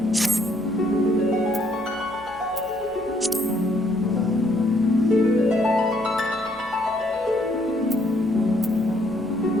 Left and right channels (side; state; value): both; normal; correlation 0.68